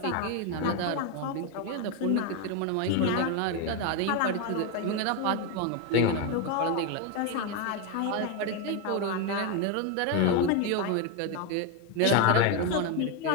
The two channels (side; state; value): both; different; correlation 0.02